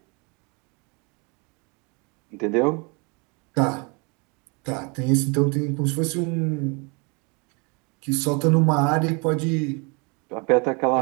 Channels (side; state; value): left; quieter; 32.0 dB